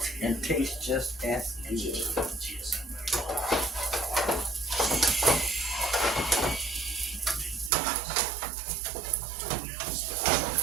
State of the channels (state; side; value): drops out; left; at 7.7 s